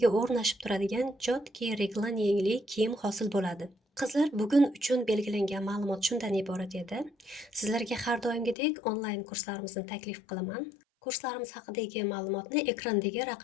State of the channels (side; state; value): right; drops out; at 8.6 s